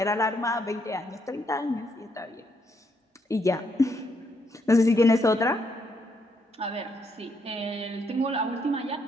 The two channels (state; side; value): normal; both; correlation 0.75